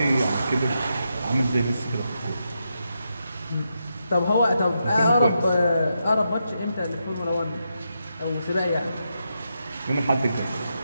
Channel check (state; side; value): inverted; both; correlation -0.84